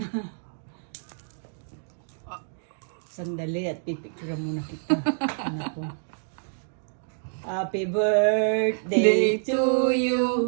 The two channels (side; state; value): left; silent; digital silence